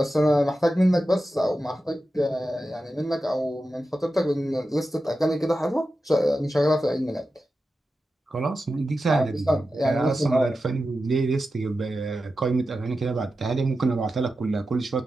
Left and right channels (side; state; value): both; normal; correlation 0.91